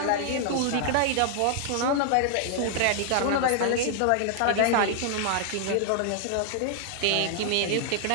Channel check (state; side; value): different; both; correlation 0.00